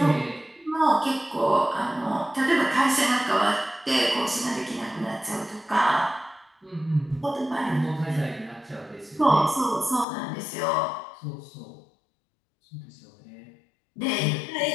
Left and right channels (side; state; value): right; drops out; at 10.1 s